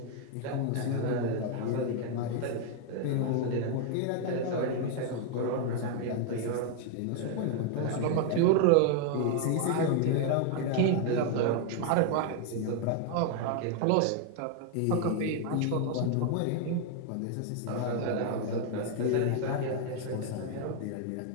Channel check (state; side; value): different; both; correlation 0.00